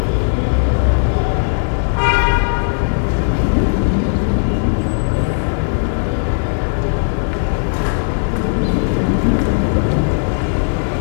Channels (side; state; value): right; silent; 61 dB below the other